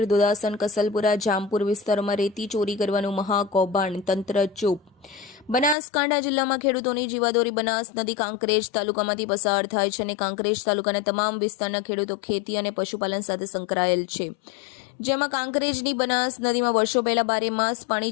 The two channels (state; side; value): drops out; right; at 5.8 s